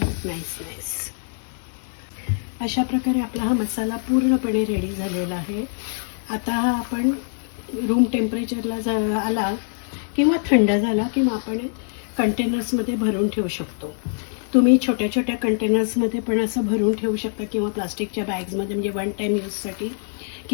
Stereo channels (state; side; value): silent; right; 63 dB below the other